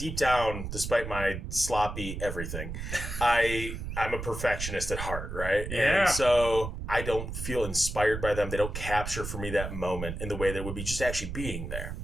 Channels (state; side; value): noise; right; rumble, 6 dB below the sound